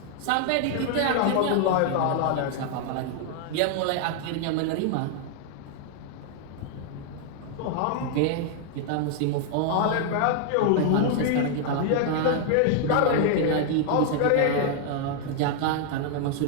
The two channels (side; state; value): both; different; correlation 0.00